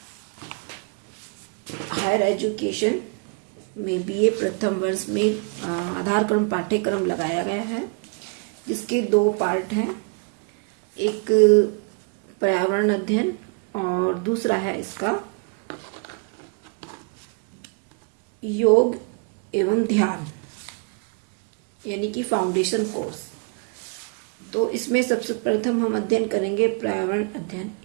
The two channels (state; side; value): quieter; left; 34.9 dB